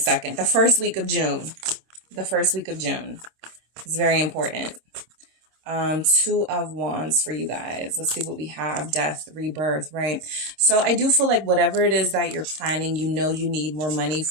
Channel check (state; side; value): late; left; 26 ms